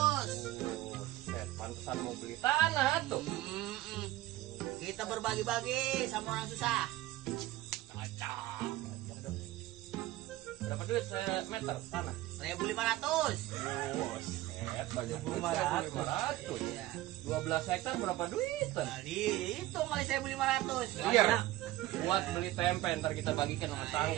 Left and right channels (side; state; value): left; quieter; 16.3 dB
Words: Buset, pantesan mau beli tanah tuh. Kita berbagi-bagi sama orang susah. Cocok. Berapa duit meter tanah? 1.500. Buset, banyak duit 1.500. 1.500. Iya. 12 hektar berapa duitan? Kali itu kali 1.500. Iya. Buat beli tempe ntar kita bagikan sama